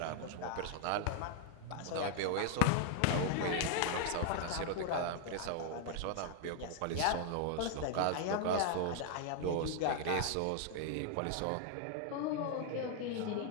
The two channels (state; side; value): different; both; correlation 0.00